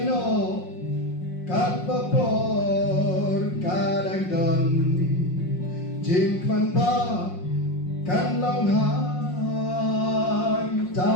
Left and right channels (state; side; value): late; right; 5.6 ms